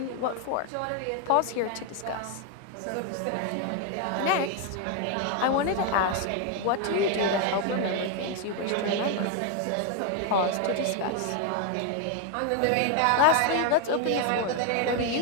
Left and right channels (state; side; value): different; both; correlation 0.00